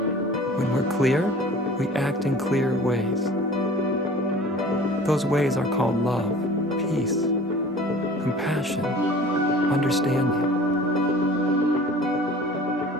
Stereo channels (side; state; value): both; normal; correlation 0.44